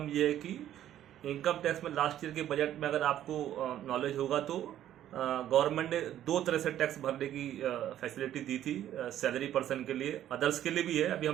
ये है कि इनकम टैक्स में लास्ट ईयर के बजट में अगर आपको नॉलेज होगा तो गवर्नमेंट ने दो तरह से टैक्स भरने की फैसिलिटी दी थी सैलरी पर्सन के लिए। अदर्स के लिए भी है, अभी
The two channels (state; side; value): quieter; left; 11.8 dB